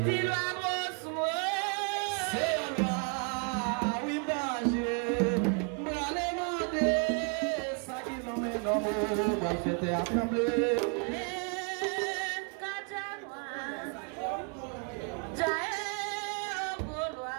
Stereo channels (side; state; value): left; quieter; 37.4 dB